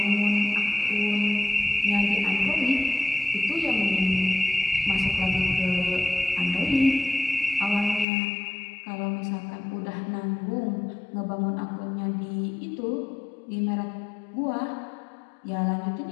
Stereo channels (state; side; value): drops out; right; at 8.1 s